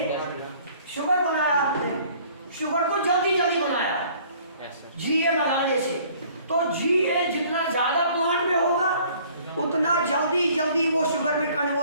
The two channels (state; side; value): inverted; both; correlation -0.55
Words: शुगर बनाया आपने, शुगर को जल्दी जल्दी बनाया GA लगाने से। तो GA जितना ज्यादा प्लांट में होगा उतना जल्दी जल्दी वो शुगर में